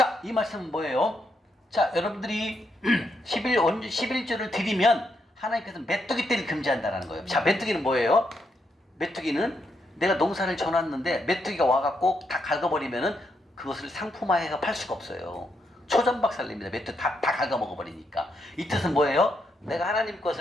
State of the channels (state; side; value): normal; both; correlation 0.79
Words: 이 말씀은 뭐예요? 자, 여러분들이 11조를 드리면 하나님께서 메뚜기 떼를 금지한다는 거예요. 자, 메뚜기는 뭐예요? 메뚜기는 내가 농사를 져놨는데 메뚜기가 와갖고 다 갉아버리면은 그것을 상품화해서 팔 수가 없어요. 초전박살냅니다. 메뚜기 다 갉아먹어버리니까. 이 뜻은 뭐예요? 내가 하나님